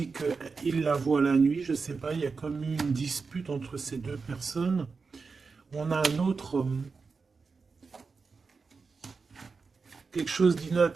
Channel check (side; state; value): left; quieter; 4.7 dB